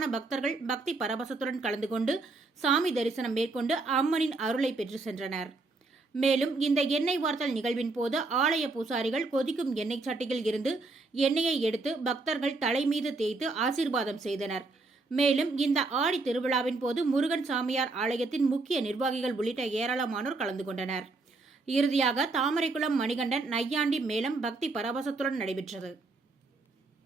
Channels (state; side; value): quieter; left; 3.5 dB